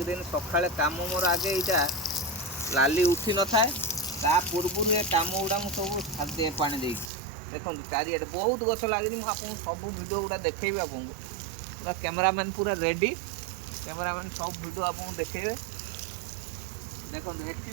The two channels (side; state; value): left; drops out; at 7.1 s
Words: दिन सका कम मोर आगे यहाँ लाली उठी न थाए ता पूर्व ये कम गुड़ा मुझे सब पानी दे देखो चारिए बहुत गछ लगे मुझे सब भिडियो गुड़ा देखेबी आपको पूरा कैमरामैन पूरा रेडी कैमरामैन सब भिडियो आपको देखेबे देखो